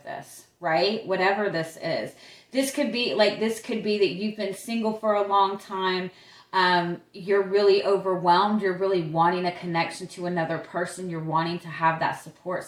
this, right? Whatever this is. This could be that you've been single for a long time. You're really overwhelmed. You're really wanting a connection to another person. You're wanting to have that support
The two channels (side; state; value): both; identical; correlation 1.00